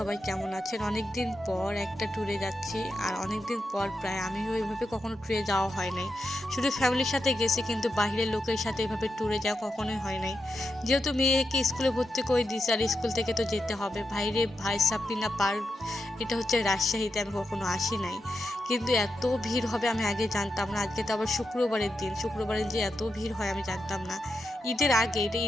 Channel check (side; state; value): both; normal; correlation 0.87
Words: কেমন আছেন? অনেক দিন পর একটা ট্যুরে যাচ্ছি, আর অনেক দিন পর প্রায় আমি ওইভাবে কখনো ট্যুরে যাওয়া হয় নাই। শুধু ফ্যামিলির সাথে গেছি, কিন্তু বাইরের লোকের সাথে এভাবে ট্যুরে যাওয়া কখনোই হয় নাই। যেহেতু মেয়েকে স্কুলে ভর্তি করে দিয়েছি আর স্কুল থেকে তো যেতে হবে। ভাইরে ভাই সাপিনা পার্ক, এটা হচ্ছে রাজশাহীতে, আমি কখনো আসি নাই। কিন্তু এত ভিড় হবে আমি আগে জানতাম না। আজকে তো আবার শুক্রবারের দিন, শুক্রবারে যে এত ভিড় হয় আমি জানতাম না। ঈদের আগে, এটা